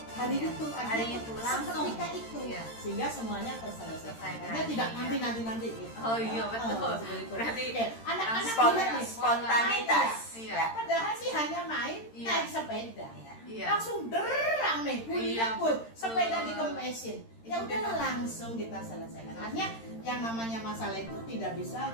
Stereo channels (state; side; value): late; right; 13 ms